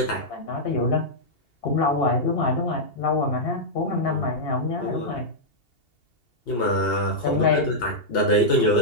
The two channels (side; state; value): right; late; 2.8 ms